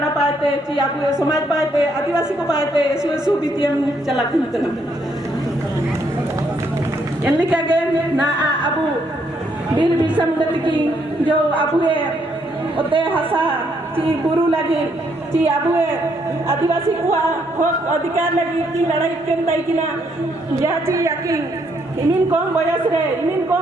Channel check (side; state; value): both; normal; correlation 0.72